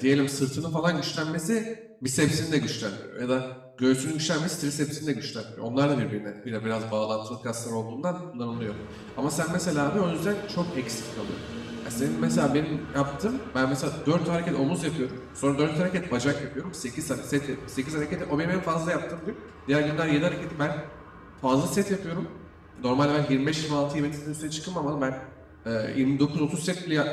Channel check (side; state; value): both; identical; correlation 1.00